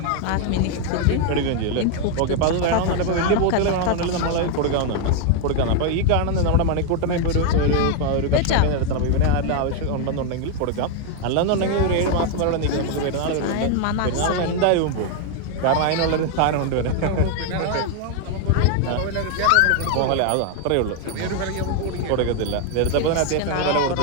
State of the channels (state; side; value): different; both; correlation 0.01